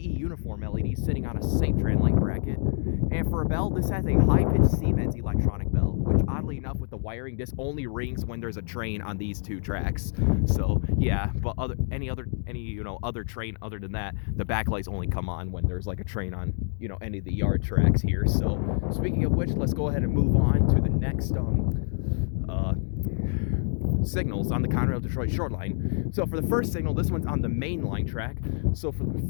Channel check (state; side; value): silent; right; 60 dB below the other